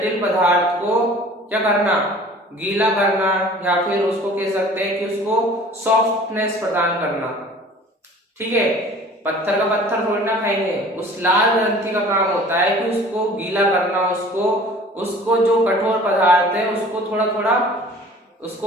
पदार्थ को क्या करना? गीला करना, या फिर उसको कह सकते हैं कि उसको सॉफ्टनेस प्रदान करना। ठीक है, पत्थर का पत्थर थोड़ी ना खाएंगे, उस लाल ग्रंथि का काम होता है कि उसको गीला करना, उसको जो कठोर पदार्थ है उसको थोड़ा थोड़ा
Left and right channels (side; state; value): both; normal; correlation 0.47